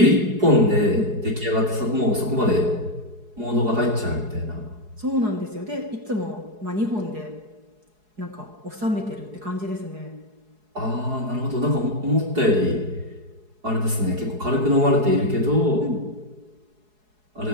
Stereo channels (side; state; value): left; late; 4.7 ms